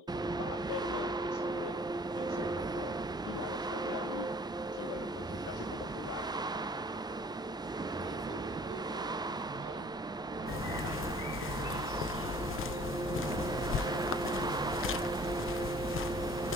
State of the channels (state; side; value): normal; both; correlation 0.53